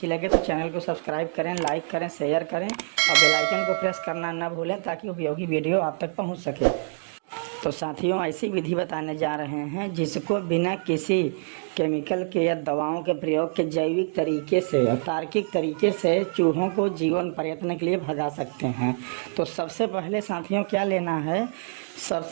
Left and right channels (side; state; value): left; silent; 61 dB below the other